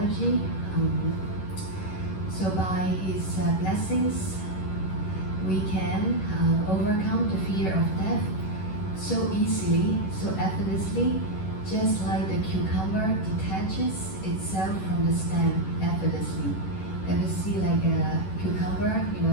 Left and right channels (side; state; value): right; late; 11 ms